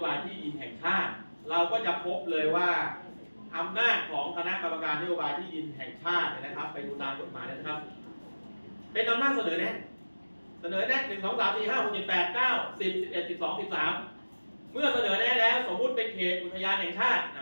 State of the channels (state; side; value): inverted; both; correlation -1.00